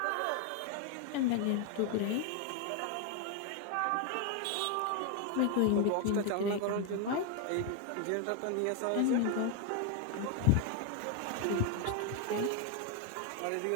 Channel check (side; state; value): both; different; correlation 0.01